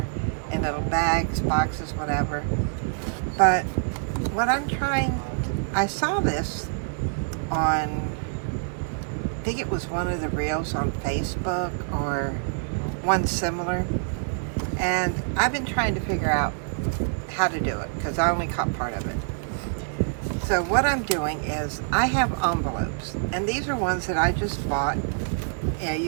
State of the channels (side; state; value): left; silent; digital silence